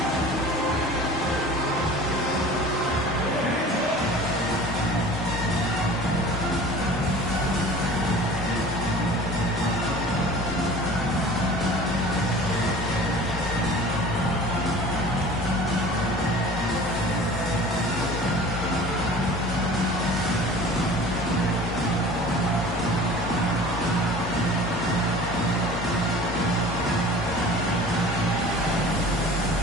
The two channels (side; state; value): both; normal; correlation 0.42